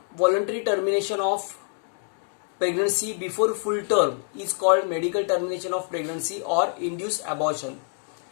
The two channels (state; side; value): silent; right; 61 dB below the other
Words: voluntary termination of pregnancy before full term is called medical termination of pregnancy और induce abortion.